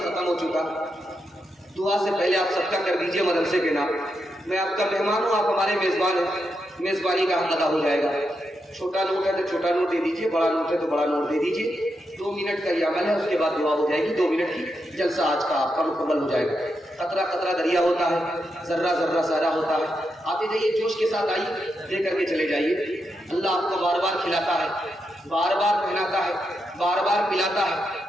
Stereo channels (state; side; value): normal; both; correlation 0.84